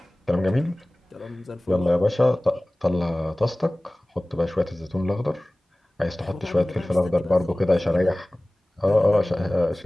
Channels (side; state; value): both; normal; correlation 0.98